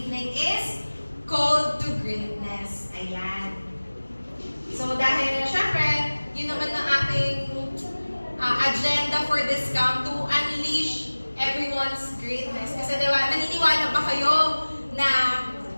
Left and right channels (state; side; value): inverted; both; correlation -1.00